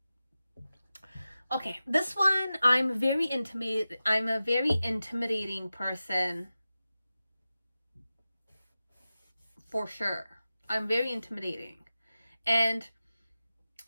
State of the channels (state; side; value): inverted; both; correlation -0.94